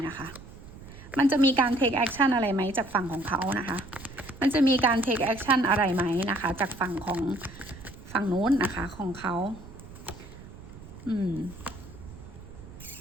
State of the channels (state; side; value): noise; right; rumble, 16 dB below the sound